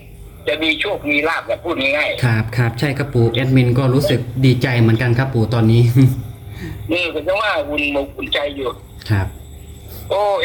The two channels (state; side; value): identical; both; correlation 1.00